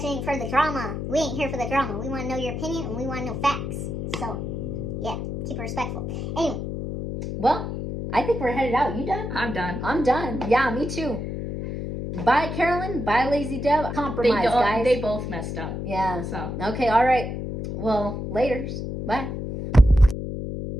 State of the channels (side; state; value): left; noise; hum, 5 dB below the sound